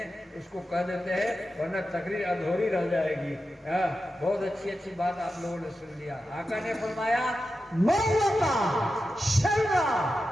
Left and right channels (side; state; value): both; normal; correlation 0.91